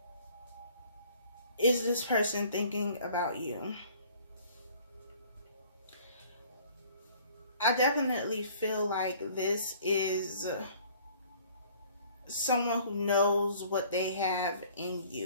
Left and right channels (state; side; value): inverted; both; correlation -0.54